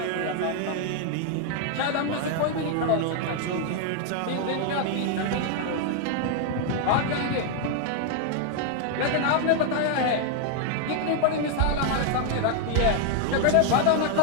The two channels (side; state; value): both; different; correlation 0.00